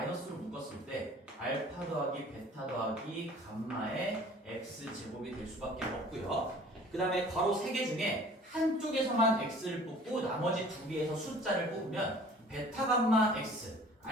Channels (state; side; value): normal; both; correlation 0.48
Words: 묶었을 때 알파 더하기 베타 더하기 감마의 x제곱이 될 수밖에 없고요. 그 다음에 괄호 3개 중에 한쪽에서만 x를 뽑고 나머지 2개에서 숫자를 뽑으면 베타 감마 x,